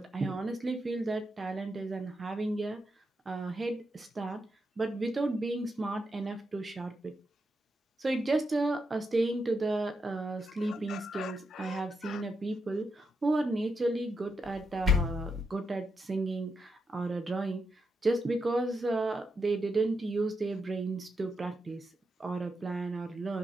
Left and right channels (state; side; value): normal; both; correlation 0.84